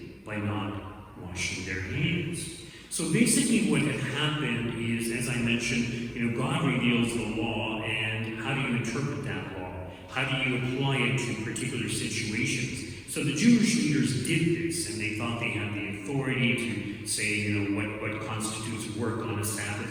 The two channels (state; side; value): identical; both; correlation 1.00